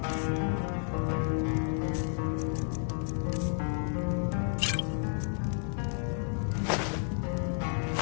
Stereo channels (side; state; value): right; silent; 57 dB below the other